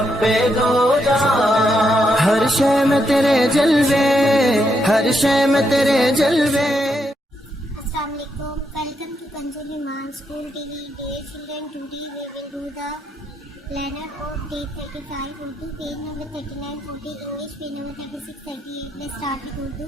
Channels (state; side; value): normal; both; correlation 0.80